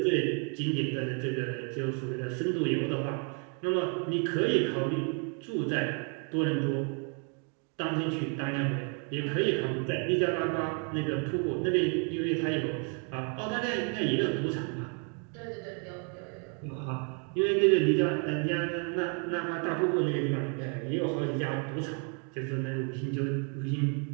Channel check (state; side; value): quieter; left; 38.2 dB